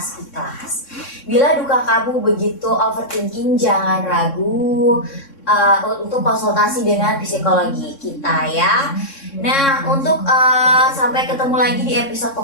ikhlas. Bila duka kamu begitu overthinking, jangan ragu untuk konsultasi dengan psikologi kita ya. Nah, untuk sampai ketemu lagi di episode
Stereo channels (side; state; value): right; late; 3.6 ms